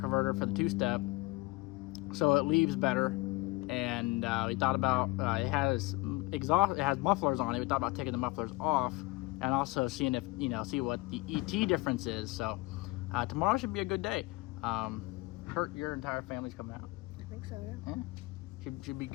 for the two-step, so it leaves better. And we thought about it has mufflers on it. We thought about taking the mufflers off and also seeing if see what the ET difference is. So tomorrow should be a good day. Your entire family's coming out. I think so, yeah. Yeah, should be a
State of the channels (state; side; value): quieter; right; 22.6 dB